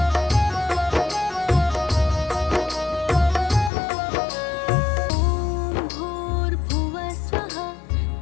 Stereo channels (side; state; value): right; drops out; at 3.7 s